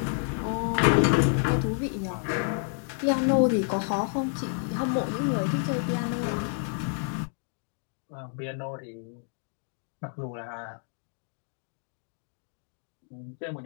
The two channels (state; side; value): silent; right; 58 dB below the other